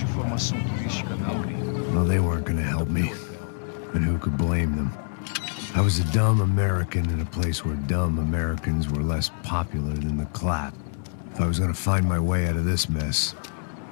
informação turística, não, gringo. Well, they weren't gonna help me. And who could blame them? I was a dumb American in a place where dumb Americans were less popular than the clap. If I was gonna find my way out of this mess,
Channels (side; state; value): right; silent; 60 dB below the other